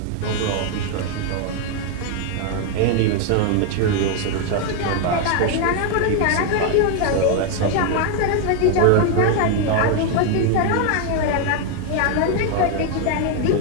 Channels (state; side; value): different; both; correlation 0.01